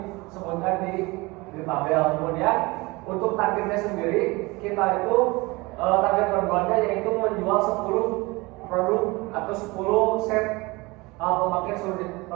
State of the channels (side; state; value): left; quieter; 23.6 dB